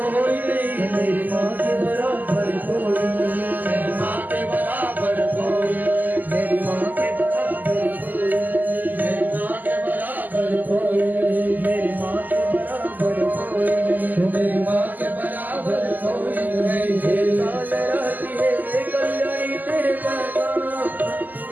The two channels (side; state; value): left; late; 0.084 ms